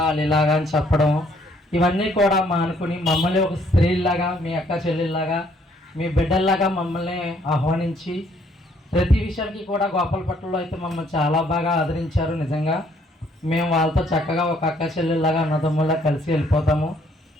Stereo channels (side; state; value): both; normal; correlation 0.65